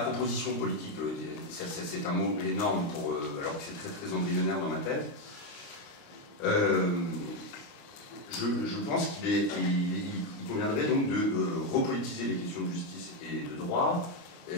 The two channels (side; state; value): right; late; 28 ms